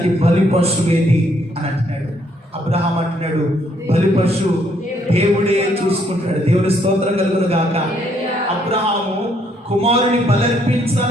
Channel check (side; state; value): both; normal; correlation 0.69